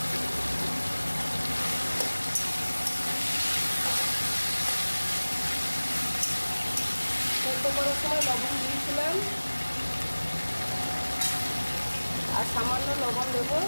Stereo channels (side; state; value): both; inverted; correlation -1.00